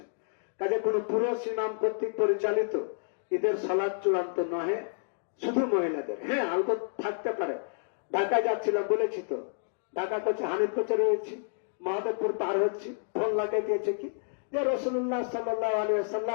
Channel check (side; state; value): right; silent; digital silence